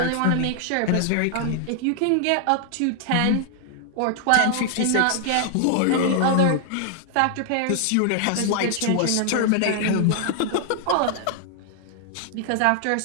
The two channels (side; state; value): both; different; correlation 0.00